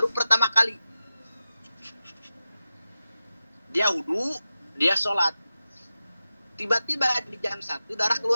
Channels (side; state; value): both; inverted; correlation -0.92